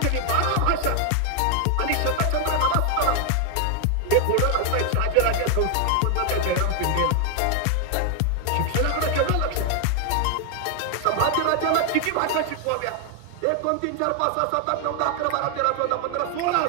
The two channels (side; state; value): both; different; correlation 0.00